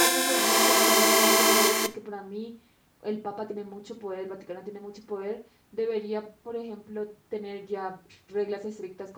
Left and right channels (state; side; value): identical; both; correlation 1.00